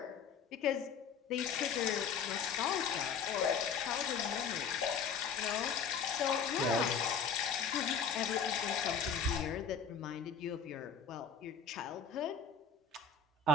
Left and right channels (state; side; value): quieter; right; 5.7 dB